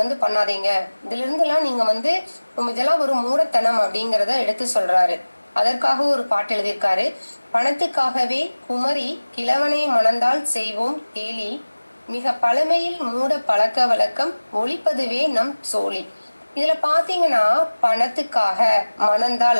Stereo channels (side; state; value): both; inverted; correlation -1.00